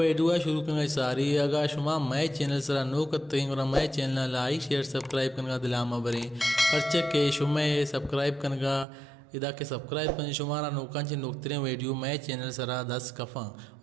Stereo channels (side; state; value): left; drops out; at 8.8 s